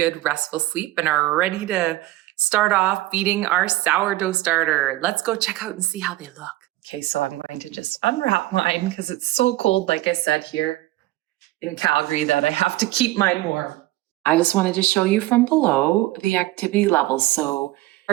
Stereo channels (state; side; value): quieter; left; 17.2 dB